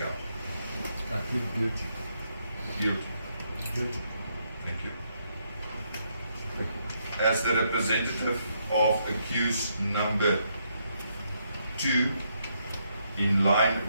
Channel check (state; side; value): inverted; both; correlation -0.76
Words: I plead guilty. Guilty. Guilty. Thank you. As the representative of accused number 2, in line